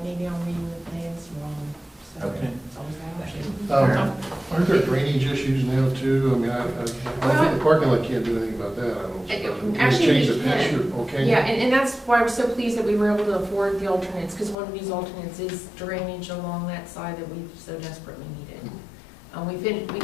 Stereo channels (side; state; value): right; drops out; at 14.6 s